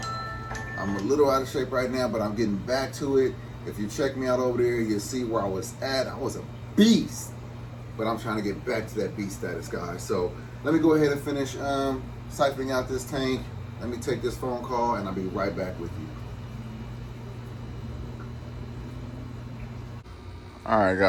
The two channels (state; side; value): identical; both; correlation 1.00